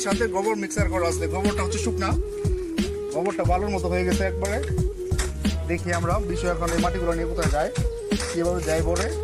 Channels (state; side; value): identical; both; correlation 1.00